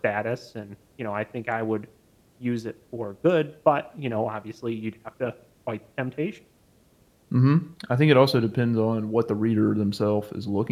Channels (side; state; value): both; identical; correlation 1.00